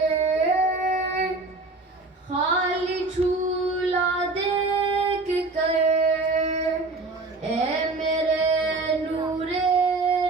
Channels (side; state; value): left; quieter; 3.4 dB